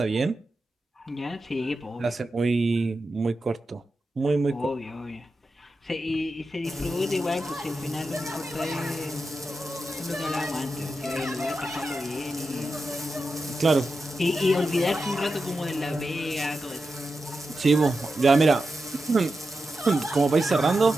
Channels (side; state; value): both; normal; correlation 0.90